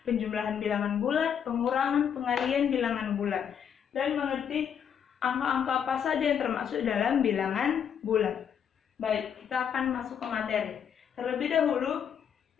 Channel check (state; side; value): quieter; right; 8.1 dB